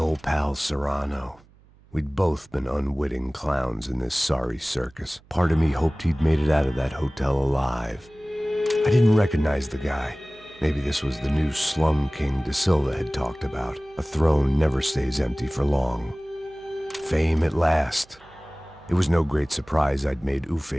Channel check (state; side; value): noise; right; hum, 28 dB below the sound